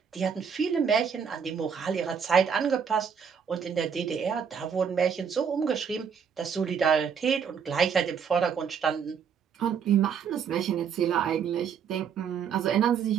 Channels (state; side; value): quieter; left; 7.0 dB